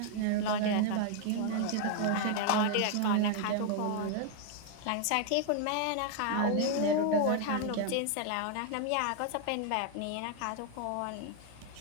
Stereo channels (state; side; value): different; both; correlation 0.00